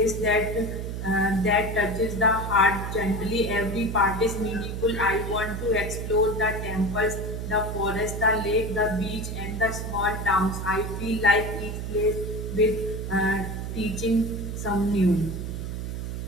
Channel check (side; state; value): right; noise; hum, 5 dB below the sound